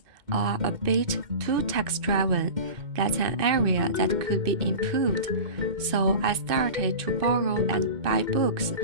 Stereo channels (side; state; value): left; late; 2.6 ms